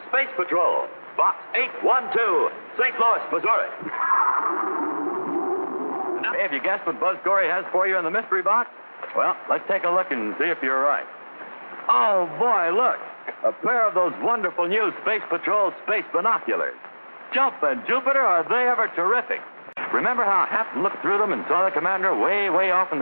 Space Patrol, Box 812, St. Louis, Missouri. Hey, have you guessed what Buzz Corey has for you in the mystery box? Well, let's take a look and see if you're right. Oh, boy, look. A pair of those wonderful new Space Patrol space binoculars. Jumpin' Jupiter, are they ever terrific? Remember how Hap looked through them and saw the commander way, way off in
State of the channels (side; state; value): both; inverted; correlation -1.00